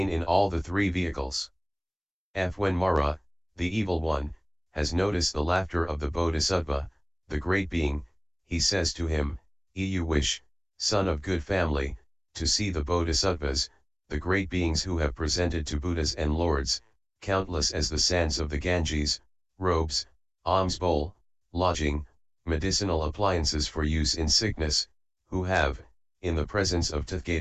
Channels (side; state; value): both; identical; correlation 1.00